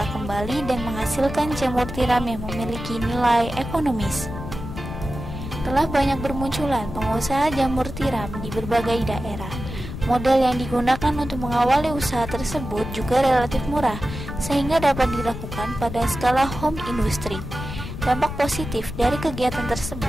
kembali dan menghasilkan jamur tiram yang memiliki nilai ekonomis. Telah banyak bermunculan pengusaha jamur tiram di berbagai daerah. Model yang digunakan untuk mengawali usaha tersebut juga relatif murah, sehingga dapat dilakukan pada skala home industry. Dampak positif dari kegiatan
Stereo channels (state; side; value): noise; left; rumble, 8 dB below the sound